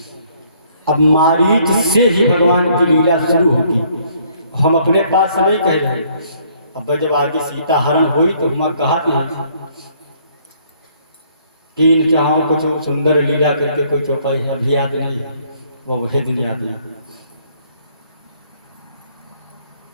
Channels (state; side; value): inverted; both; correlation -0.64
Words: अब मारीच से ही भगवान की लीला शुरू होगी। हम अपने पास से नहीं कह रहे, अब जब आगे सीता हरण हुई तो हम कहा कि इन चाहों कुछ सुंदर लीला करके कोई चौपाई है, अभी याद नहीं है, वो वही दिन याद नहीं।